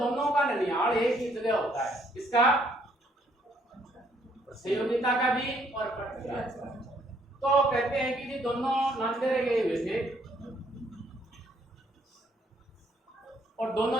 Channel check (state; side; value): normal; both; correlation 0.67